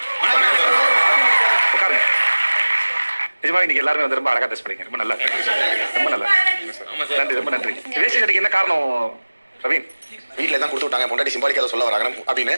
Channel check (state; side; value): inverted; both; correlation -1.00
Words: உட்காருங்க. நிஜமா இன்னைக்கு எல்லாருமே வந்து ரொம்ப அழகா ட்ரெஸ் பண்ணீங்க, ரொம்ப நல்லா, ரொம்ப நல்லா, நன்றி, ரொம்ப நன்றி. வேஷ்டி சட்டைக்கு என்ன காரணம் ரவீன்? வீட்டில் தான் கொடுத்து விட்டாங்க, பொண்டாட்டி சிம்பாலிக்காக சொல்ல வராங்க அப்படின்னு.